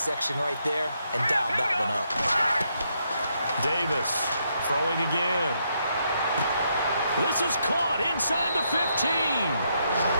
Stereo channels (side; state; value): both; inverted; correlation -0.77